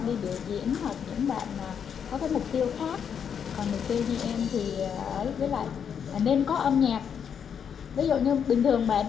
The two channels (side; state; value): right; quieter; 7.6 dB